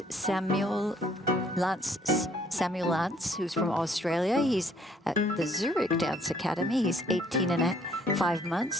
Samuel Lantz, who's from Australia. He's at the Zurich Dance Academy. He's 18 and 5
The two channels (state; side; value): normal; both; correlation 0.63